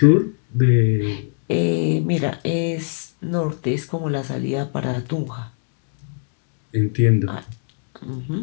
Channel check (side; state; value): right; silent; 64 dB below the other